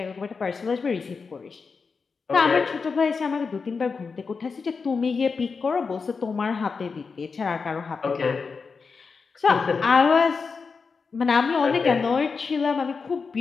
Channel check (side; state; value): right; quieter; 5.0 dB